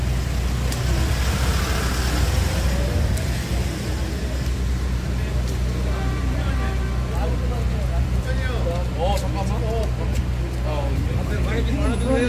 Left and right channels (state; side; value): identical; both; correlation 1.00